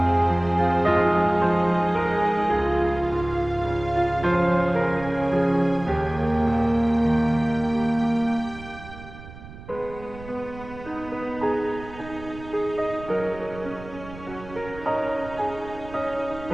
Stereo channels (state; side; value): noise; right; rumble, 16 dB below the sound